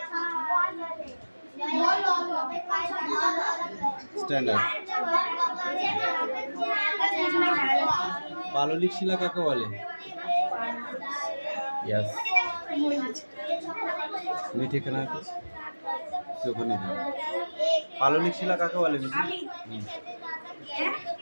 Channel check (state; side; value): inverted; both; correlation -1.00